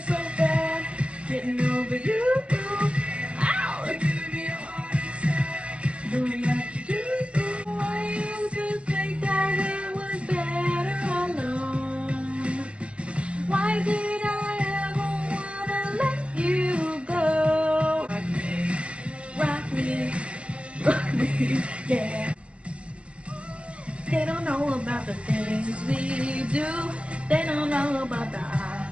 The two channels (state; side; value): late; left; 0.061 ms